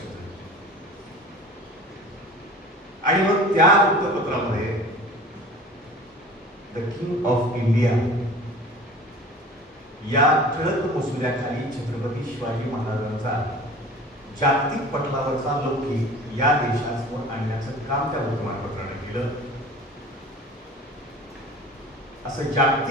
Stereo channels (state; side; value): normal; both; correlation 0.41